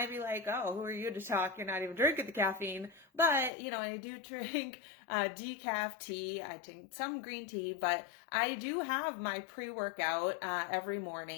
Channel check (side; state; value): right; drops out; at 3.5 s